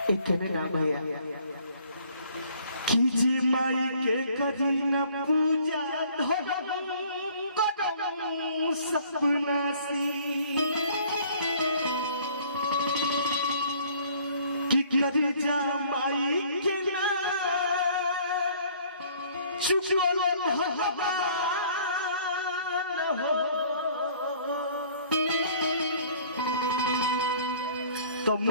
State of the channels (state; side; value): inverted; both; correlation -0.55